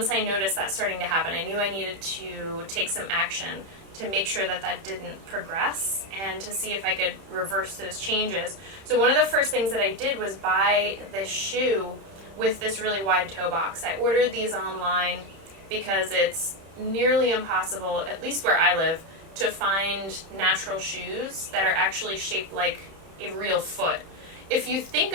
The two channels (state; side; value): late; left; 31 ms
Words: I noticed that starting to happen, I knew I needed to take some action to make sure that that didn't progress and to see if I could reverse those changes. So one of the first things that I did was buy this shoe with this really wide toe box. I ordered these online because it's nearly impossible, at least where I live, to find natural shoes that are actually shaped like a real foot. If you think